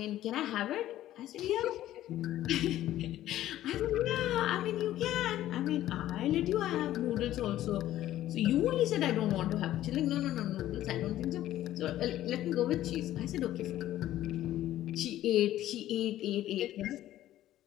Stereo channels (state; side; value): quieter; right; 13.6 dB